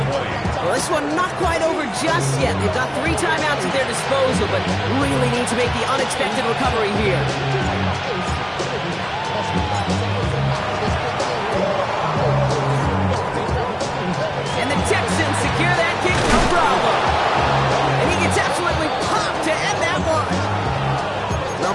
Well, this one not quite over just yet. They've got 3 timeouts at their disposal, but really need to make the unexpected recovery here. And the Texans secure that kick, no problem. And he gets absolutely popped to end that one. Well,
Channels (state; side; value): identical; both; correlation 1.00